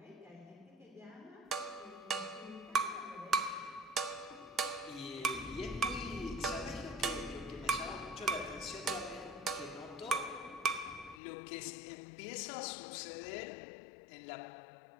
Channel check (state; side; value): drops out; right; at 11.2 s